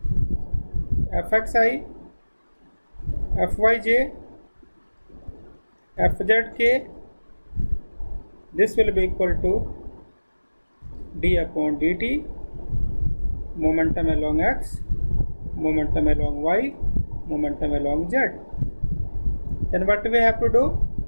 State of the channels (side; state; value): both; inverted; correlation -1.00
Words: fxi, fyj, fzk. This will be equal to d upon dt, momentum along x, momentum along y, momentum along z. Then what we have to do?